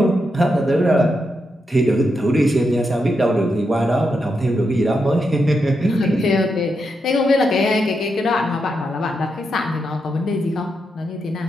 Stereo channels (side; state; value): both; normal; correlation 0.84